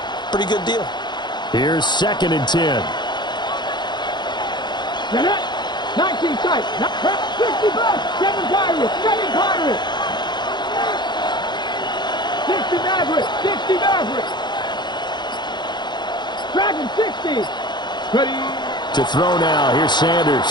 Pretty good deal. Here's 2nd and 10. 19 tight, 60 bucks, 7 Pirates, 7 Pirates. 60 Mavericks, 60 Mavericks. Dragon 60. Ready. To throw now, here's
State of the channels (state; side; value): late; right; 0.21 ms